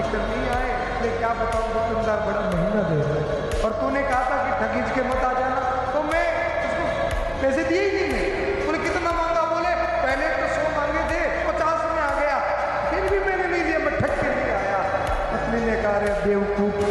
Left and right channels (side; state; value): both; identical; correlation 1.00